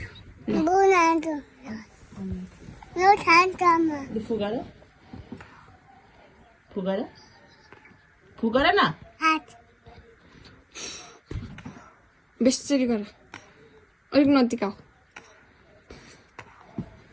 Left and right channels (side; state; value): both; identical; correlation 1.00